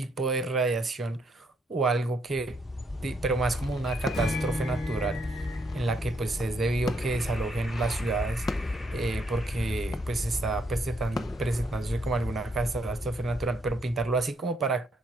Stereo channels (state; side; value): normal; both; correlation 0.74